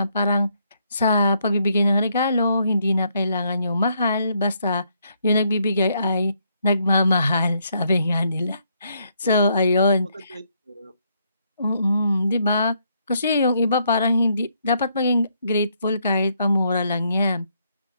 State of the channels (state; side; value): inverted; both; correlation -0.73